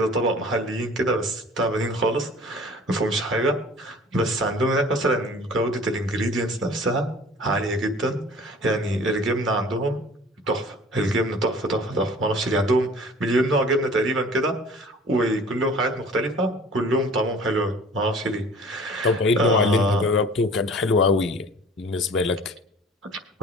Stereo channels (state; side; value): normal; both; correlation 0.47